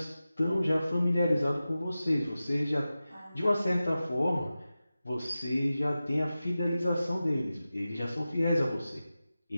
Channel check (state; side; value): inverted; both; correlation -0.95